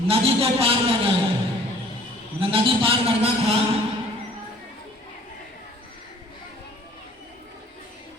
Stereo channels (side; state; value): both; normal; correlation 0.54